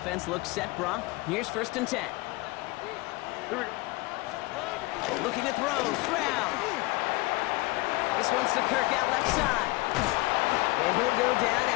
looks set, Brock. Here's first and 10. Here we go. Looking to throw, Stroud. This one's to Kirk out left side. And he'll go down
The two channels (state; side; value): quieter; right; 22.8 dB